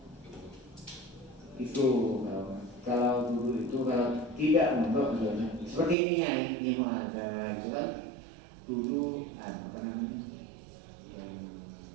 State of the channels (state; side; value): drops out; left; at 6.0 s